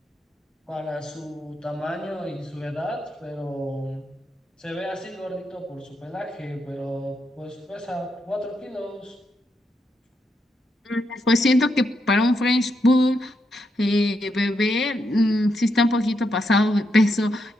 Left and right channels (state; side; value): normal; both; correlation 0.81